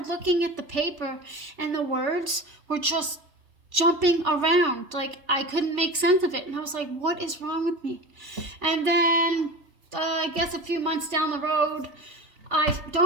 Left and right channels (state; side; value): late; left; 3.4 ms